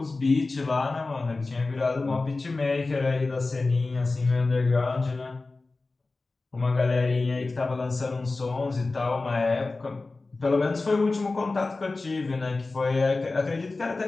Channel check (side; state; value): right; quieter; 3.5 dB